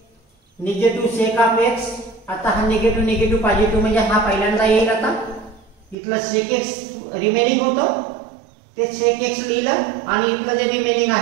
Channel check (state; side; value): drops out; left; at 6.0 s